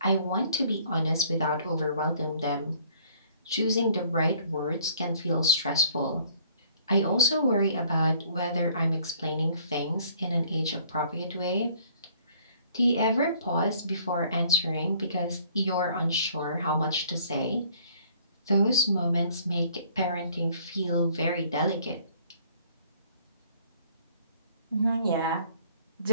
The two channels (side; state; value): both; inverted; correlation -0.59